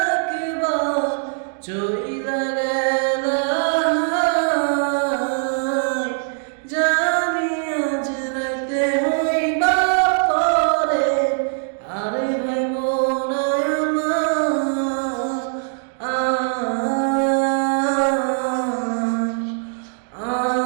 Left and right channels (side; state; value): left; silent; digital silence